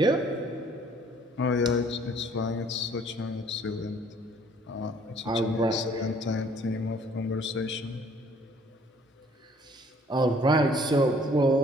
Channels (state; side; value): normal; both; correlation 0.58